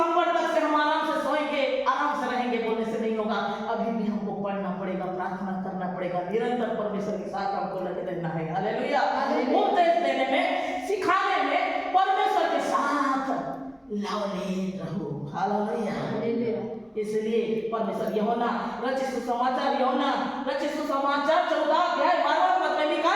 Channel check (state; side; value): identical; both; correlation 1.00